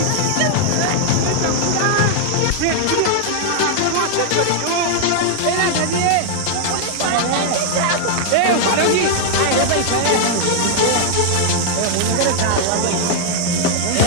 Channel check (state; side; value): different; both; correlation -0.01